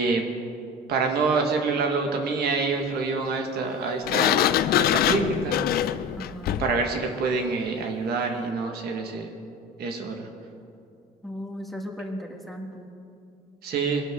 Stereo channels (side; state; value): both; normal; correlation 0.31